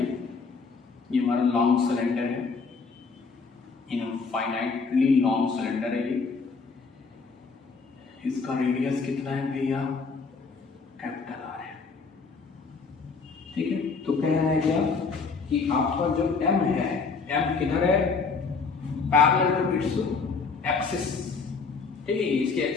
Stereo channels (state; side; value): quieter; right; 4.8 dB